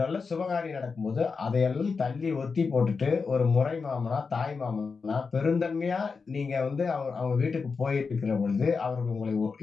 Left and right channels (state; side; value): quieter; right; 4.9 dB